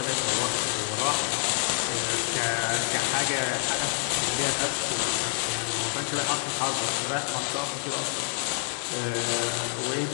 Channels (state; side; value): silent; right; 60 dB below the other